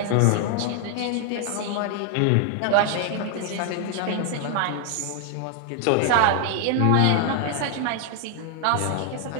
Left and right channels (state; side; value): different; both; correlation 0.00